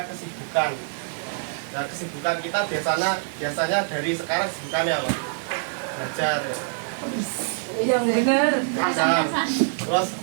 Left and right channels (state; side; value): silent; left; digital silence